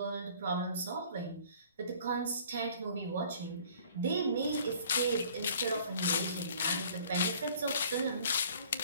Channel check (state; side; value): inverted; both; correlation -0.53